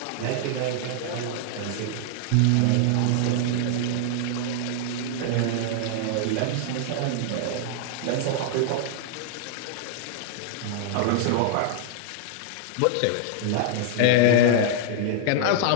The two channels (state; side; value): different; both; correlation -0.01